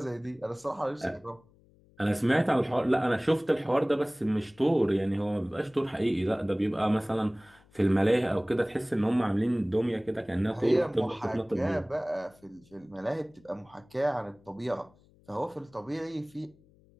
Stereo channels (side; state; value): left; noise; hum, 29 dB below the sound